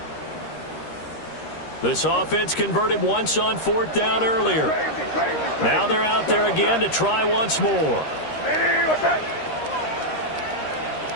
This offense converted once on 4th down earlier. Now they're out there again to try once more. Ready, what's that?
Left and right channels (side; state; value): right; late; 13 ms